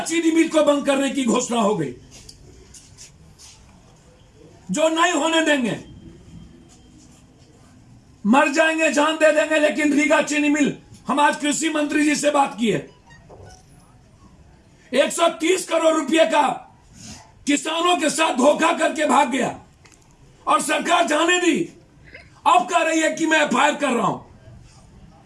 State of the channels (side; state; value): both; identical; correlation 1.00